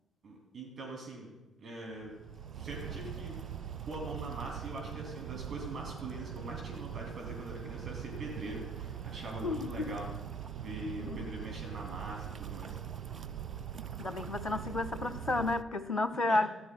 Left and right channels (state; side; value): normal; both; correlation 0.60